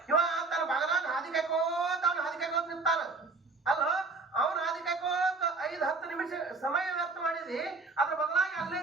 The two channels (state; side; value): quieter; left; 3.8 dB